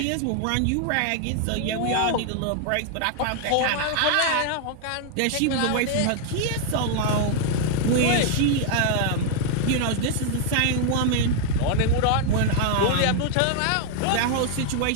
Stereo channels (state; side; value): different; both; correlation 0.00